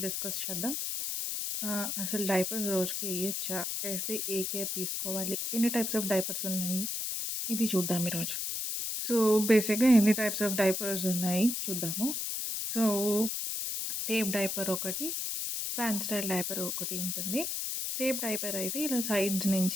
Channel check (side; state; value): left; noise; hiss, 2 dB below the sound